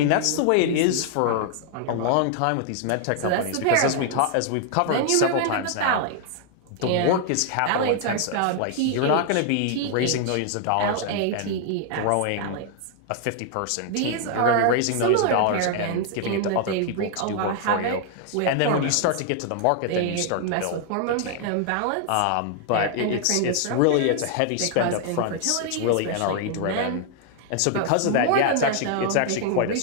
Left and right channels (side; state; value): both; different; correlation 0.00